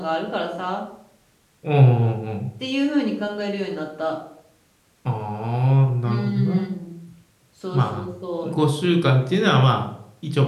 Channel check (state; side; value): identical; both; correlation 1.00